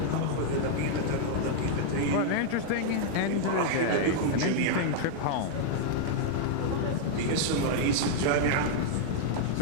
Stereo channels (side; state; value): both; different; correlation -0.01